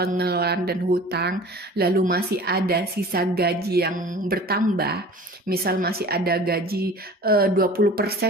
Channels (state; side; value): normal; both; correlation 0.42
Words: dan hutang, lalu masih ada sisa gaji yang bertambah, misal masih ada gaji